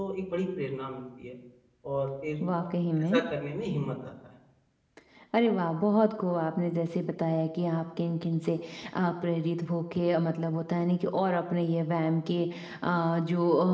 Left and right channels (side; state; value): both; identical; correlation 1.00